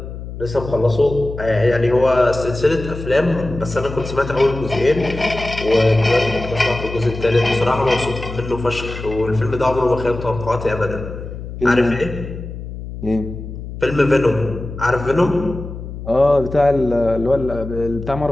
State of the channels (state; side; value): noise; left; hum, 10 dB below the sound